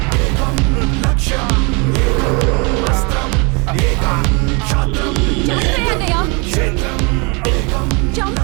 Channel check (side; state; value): left; quieter; 30.9 dB